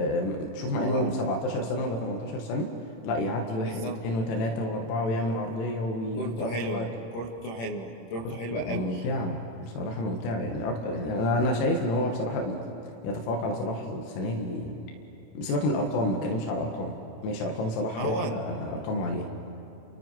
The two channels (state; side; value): late; right; 26 ms